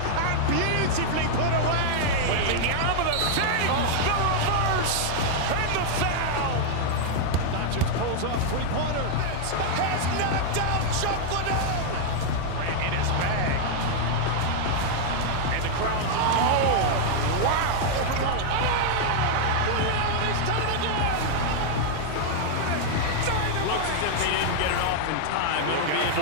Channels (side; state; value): both; different; correlation -0.01